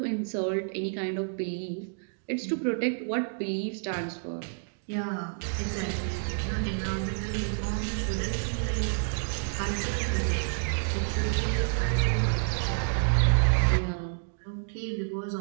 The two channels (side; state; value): left; silent; digital silence